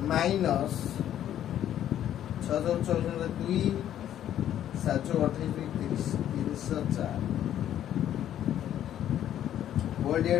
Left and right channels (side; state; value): right; quieter; 11.1 dB